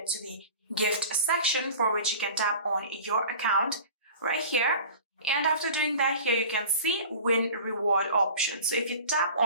to the gift section, for which you can tap on your account right here. And after doing that, here you can see win reward option. So if you tap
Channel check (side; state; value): both; inverted; correlation -0.39